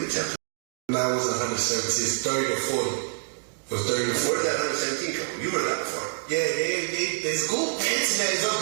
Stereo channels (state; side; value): silent; left; digital silence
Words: attempted. No, it wasn't 117. It's 30 to 40. It was 30 to 40. Where did that 117 come from? You heard that before. Yeah, there's Google. The internet is